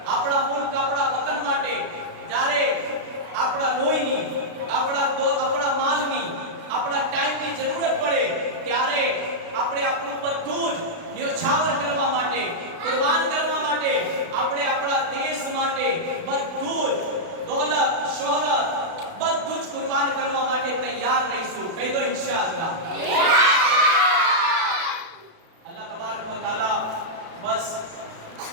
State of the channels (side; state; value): left; late; 36 ms